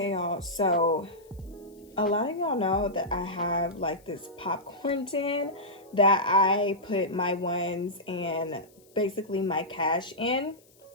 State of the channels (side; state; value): left; noise; hiss, 30 dB below the sound